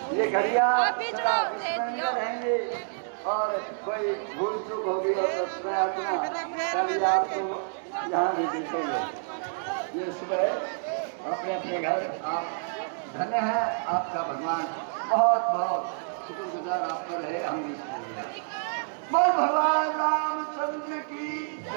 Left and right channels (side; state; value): left; silent; 59 dB below the other